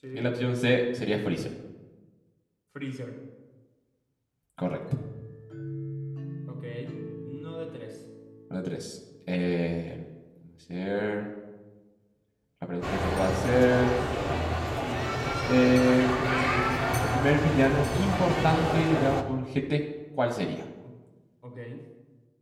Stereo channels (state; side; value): identical; both; correlation 1.00